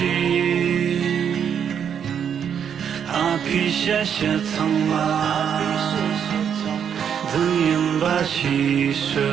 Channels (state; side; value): quieter; left; 8.1 dB